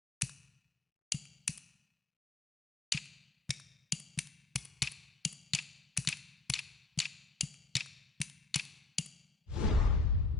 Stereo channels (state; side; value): quieter; right; 3.3 dB